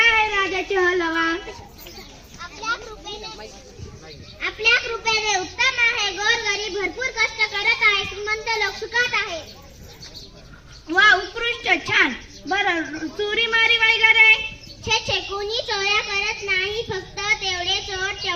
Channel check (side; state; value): both; identical; correlation 1.00